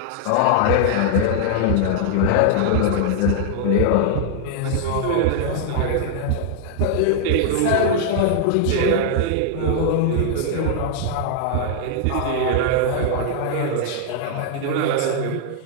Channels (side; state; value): both; different; correlation 0.00